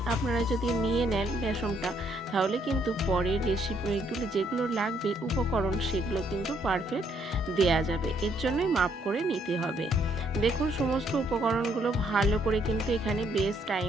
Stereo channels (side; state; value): both; normal; correlation 0.70